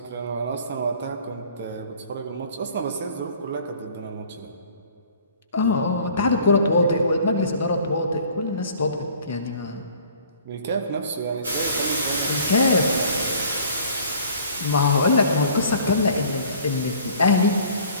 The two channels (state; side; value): inverted; both; correlation -0.51